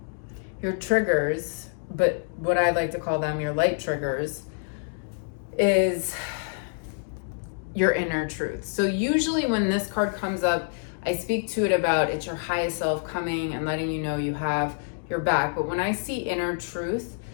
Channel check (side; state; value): right; silent; digital silence